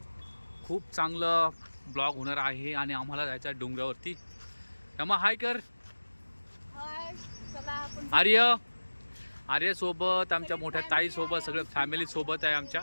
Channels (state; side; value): inverted; both; correlation -1.00